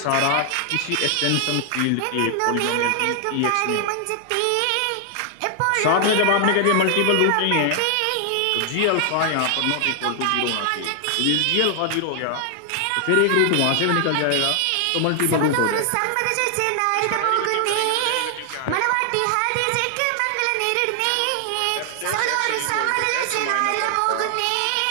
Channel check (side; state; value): both; different; correlation 0.00